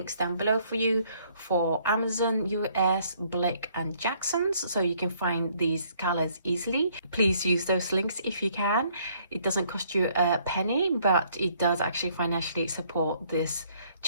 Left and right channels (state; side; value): inverted; both; correlation -0.64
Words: down below for you for Amazon, US, Blick and Jackson's, so you can find these colors easily. Please use those links if you can. It doesn't cost you a penny, but it does actually financially support this